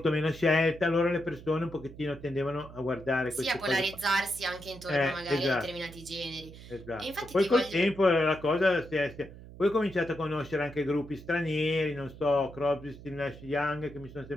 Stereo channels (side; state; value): right; noise; hum, 16 dB below the sound